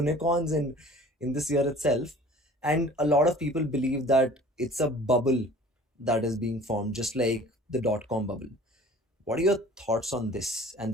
in this year itself. And a lot of people believe that it's a bubble that is being formed, just like the dot-com bubble. What are your thoughts on this? And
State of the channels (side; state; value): both; normal; correlation 0.47